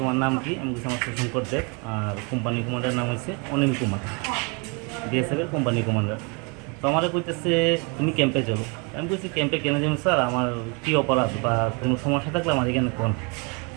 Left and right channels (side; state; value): left; quieter; 32.6 dB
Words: নাম কি আমি কিছু আমার শঙ্কর দেব আর কোম্পানি কমান্ডার নাম হচ্ছে অনিল কুমার বিএসএফের কোম্পানি কমান্ডার তো আমার কইতেছে তুমি ক্যাম্পে চলো আমি কইছি ক্যাম্পে কেন যাবো স্যার আমার কী অপরাধ বা কোনো সমস্যা থাকলে আমার এখানে কোন